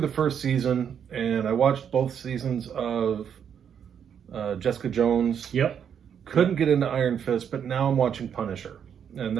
the first season, and I watched both seasons of Jessica Jones. Yep. Couldn't get into Iron Fist, but now I'm watching Punisher. And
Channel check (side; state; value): left; quieter; 8.1 dB